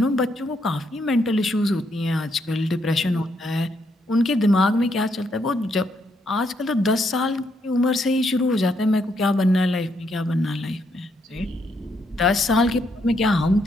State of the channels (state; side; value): normal; both; correlation 0.75